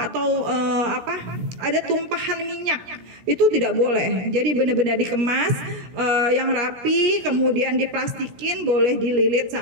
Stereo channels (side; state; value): left; late; 16 ms